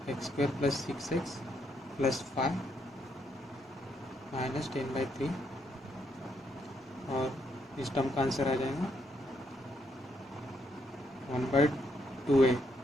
x square plus 6x plus 5 minus 10/3, और इस टर्म का आंसर आ जाएगा 2a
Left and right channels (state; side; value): normal; both; correlation 0.75